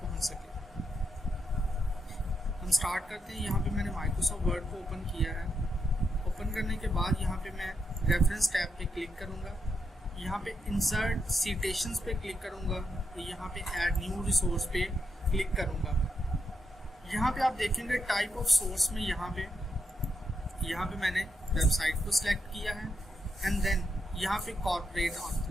पहुंच सके। हम स्टार्ट करते हैं। यहाँ पे मैंने माइक्रोसॉफ्ट वर्ड को ओपन किया है। ओपन करने के बाद यहाँ पे मैं रेफरेंस टैब पे क्लिक करूँगा। यहाँ पे इंसर्ट सिटेशंस पे क्लिक करूँगा। यहाँ पे ऐड न्यू रिसोर्स पे क्लिक करूँगा। यहाँ पे आप देखेंगे टाइप ऑफ सोर्स में यहाँ पे मैंने वेबसाइट को सिलेक्ट किया है एंड देन यहाँ पे कॉर्पोरेट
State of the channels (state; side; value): normal; both; correlation 0.82